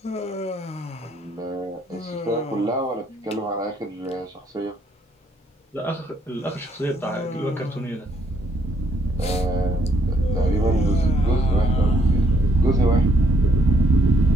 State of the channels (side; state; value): both; normal; correlation 0.70